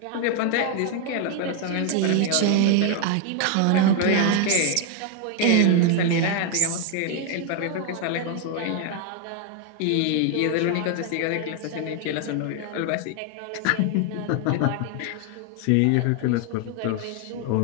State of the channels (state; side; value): different; both; correlation 0.01